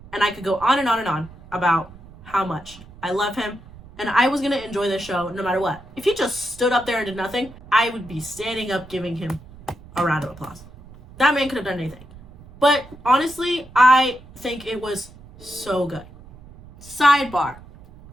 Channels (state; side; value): noise; right; rumble, 20 dB below the sound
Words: And I could go on and on and on about how much I love him. And I was going to enjoy this show no matter what. If he just stood up there and did nothing, I would be standing up giving him a round of applause. That man could have done anything. But honestly, I think it was so good. Sidebar.